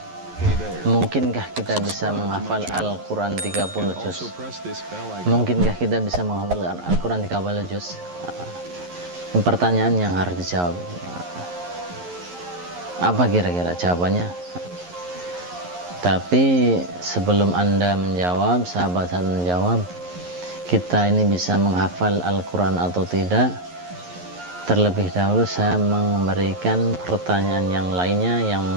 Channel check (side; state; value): left; late; 11 ms